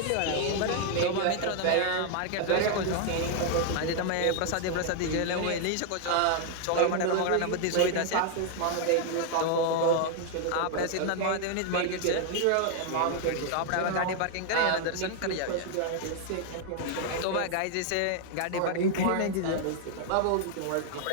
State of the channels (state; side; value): different; both; correlation 0.00